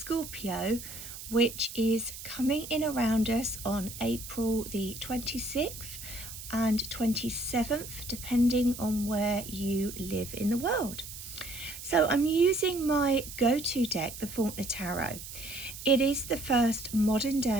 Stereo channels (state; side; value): noise; right; hiss, 11 dB below the sound